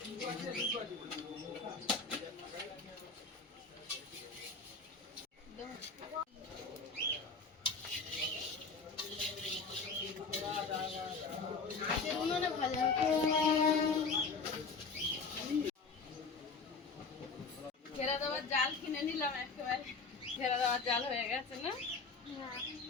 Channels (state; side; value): quieter; right; 4.5 dB